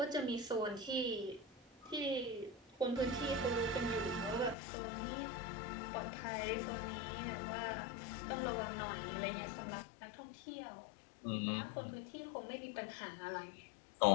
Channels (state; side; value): drops out; right; at 4.5 s